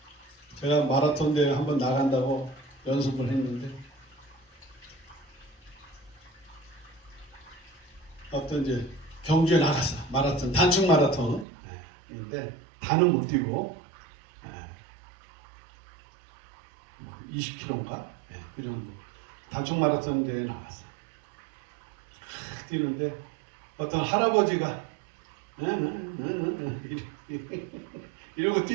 제가 마라톤 대회 한번 나간다고 연습을 했는데, 어떤 이제 경주에 나갔어. 마라톤, 단축 마라톤. 근데 다는 못 뛰고, 20km인가? 그 정도. 단축 마라톤 대회에 나갔어. 뛰는데, 어떤 할아버지가, 이러고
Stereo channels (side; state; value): left; drops out; at 11.5 s